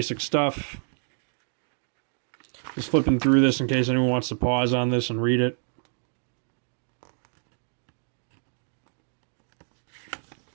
stuff. Just flipping through this in case anyone wants to pause on this and read it.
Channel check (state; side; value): silent; left; digital silence